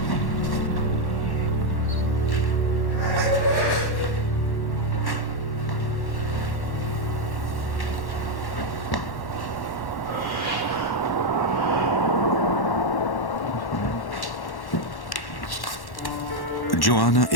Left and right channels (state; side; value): late; right; 1.1 ms